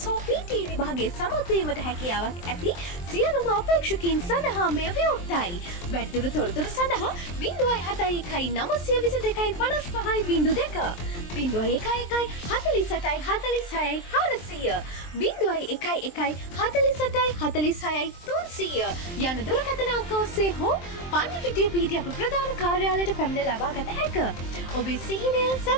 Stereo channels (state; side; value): late; right; 23 ms